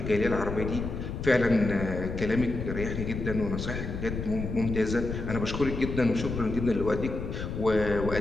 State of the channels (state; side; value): noise; left; rumble, 5 dB below the sound